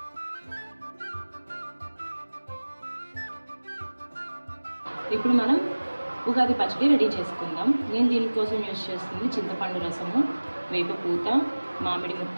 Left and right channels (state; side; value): inverted; both; correlation -1.00